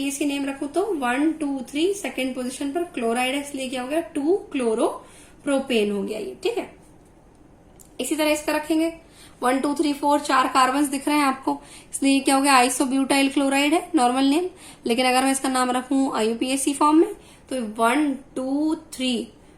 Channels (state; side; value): identical; both; correlation 1.00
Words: नेम रखूं तो 1 2 3 सेकेंड पोजिशन पर क्लोराइड है, इसलिए क्या हो गया, 2 क्लोरोप्रोपेन हो गया ये। ठीक है, इसी तरह इसका रखेंगे 1 2 3 4 चार कार्बन दिख रहे हैं आपको, इसलिए क्या हो गया, आइसोब्यूटाइल क्लोराइड है नॉर्मल नेम। लेकिन अगर मैं इसका नाम रखूं IUPAC फॉर्म में तो 1 2 3